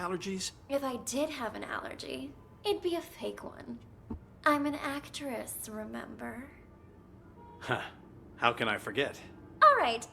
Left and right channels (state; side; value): identical; both; correlation 1.00